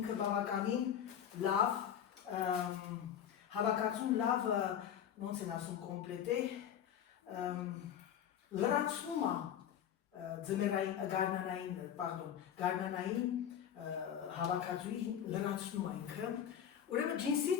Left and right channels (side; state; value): right; quieter; 9.4 dB